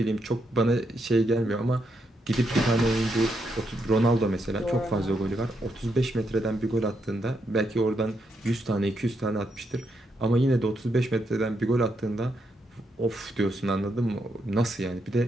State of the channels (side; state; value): both; normal; correlation 0.80